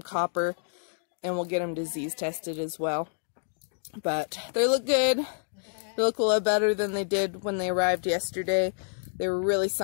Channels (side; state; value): right; silent; digital silence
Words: copper, and we'll get them disease tested as well. But they look good. They look a lot better than they did when they arrived yesterday. They were really